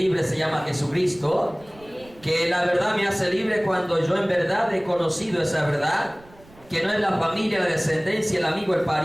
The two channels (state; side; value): noise; right; rumble, 25 dB below the sound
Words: se llama Jesucristo, que la verdad me hace libre cuando yo en verdad he conocido esa verdad, que no es la familia, la descendencia, el amigo, el